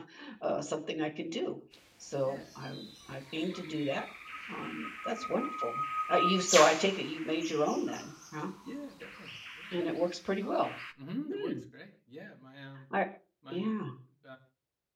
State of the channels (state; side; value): identical; both; correlation 1.00